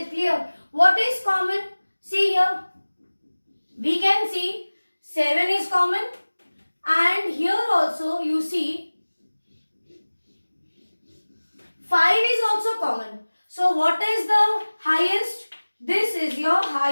clear? What is common? See here. We can see 7 is common. And here also you see 5 is also common. So what is the highest? This is your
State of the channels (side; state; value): both; inverted; correlation -1.00